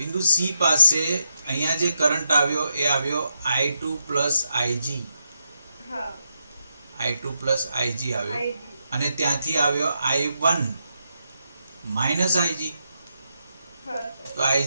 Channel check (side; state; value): both; inverted; correlation -0.83